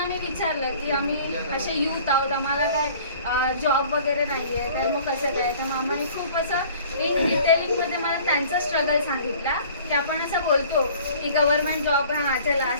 मी विचारलं की आम्ही असे यूथ आहोत, आम्हाला काय जॉब वगैरे नाही आहे, तर मग कसं काय. तर मामाने खूप असं इन डिटेलिंगमध्ये मला त्यांचा स्ट्रगल सांगितला की आपण असं बोलतो की गव्हर्नमेंट जॉब हां चला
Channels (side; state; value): both; inverted; correlation -0.50